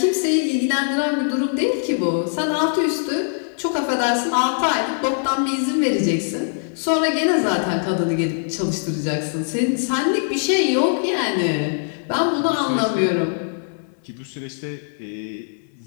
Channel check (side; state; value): right; silent; 64 dB below the other